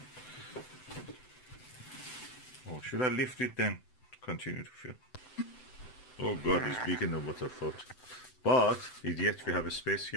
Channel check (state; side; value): late; right; 7.9 ms